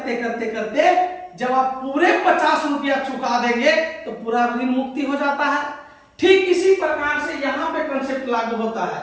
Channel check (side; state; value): both; identical; correlation 1.00